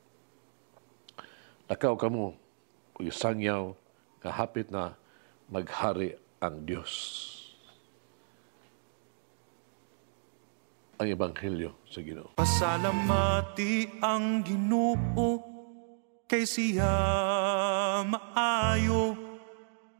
Lakaw kamo ug sangyaw nga hapit na maghari ang Dios. Ang Ebanghelyo sa Ginoo. Pasalamati ang Ginoo kay siya maayo.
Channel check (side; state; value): left; silent; digital silence